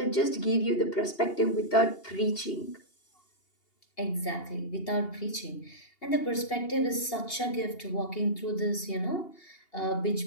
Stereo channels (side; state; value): right; late; 2.8 ms